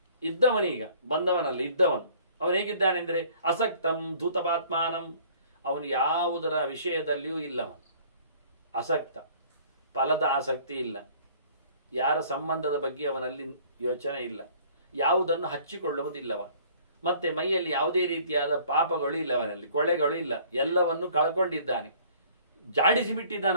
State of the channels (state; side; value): inverted; both; correlation -0.54